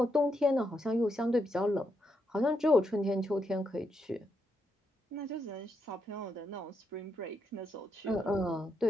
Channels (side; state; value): both; normal; correlation 0.80